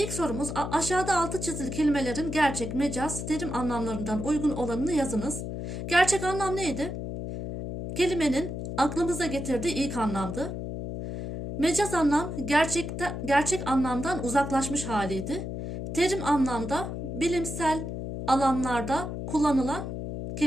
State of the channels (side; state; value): left; noise; hum, 6 dB below the sound